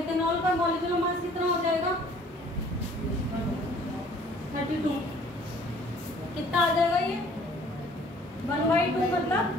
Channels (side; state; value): both; normal; correlation 0.55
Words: का मॉलिक्यूलर मास कितना हो जाएगा 32, कितना आ जाएगा ये 1/2 मतलब